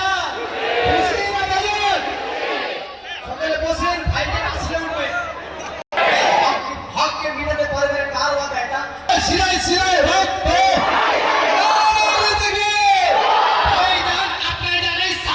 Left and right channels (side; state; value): both; identical; correlation 1.00